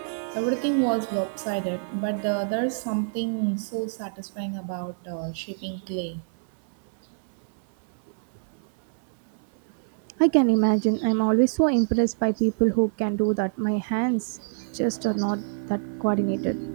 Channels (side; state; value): left; silent; 61 dB below the other